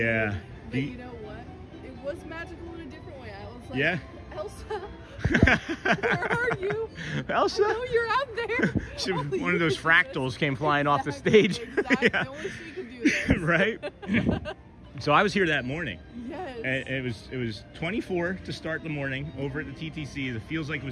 But you know what? It was magical in a different way. I was like, Yeah. Elsa, where are you? Elsa? I know you're out there. She- Only one you of those can do it. fractals came flying off the Exactly, stage. Exactly. Yeah. Only she can do this. Right? So I was here that morning. Yes. And it was 24 to start the morning over at the TTC. It feels like it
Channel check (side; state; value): both; identical; correlation 1.00